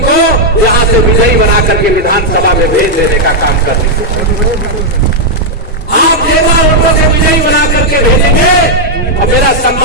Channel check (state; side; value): normal; both; correlation -0.03